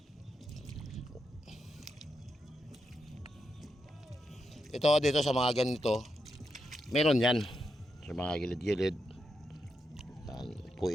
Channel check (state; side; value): normal; both; correlation 0.85